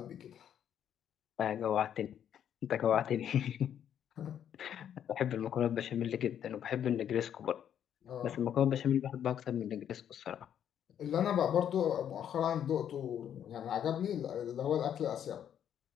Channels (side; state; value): right; quieter; 9.5 dB